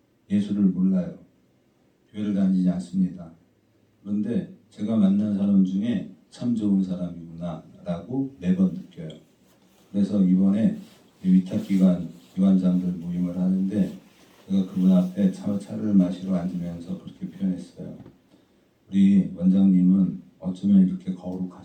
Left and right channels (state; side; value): identical; both; correlation 1.00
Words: 예수를 몰라요. 교회를 다니지 않습니다. 그런데 제가 만난 사람 중에 참 좋은 사람이구나 라고 매번 느껴요. 그래서 이번에 위탁기관장들 모임을 하는데 제가 그분 앞에 차를 마시러 앉으면서 그렇게 표현했어요. 우리 원장님은 어쩌면 이렇게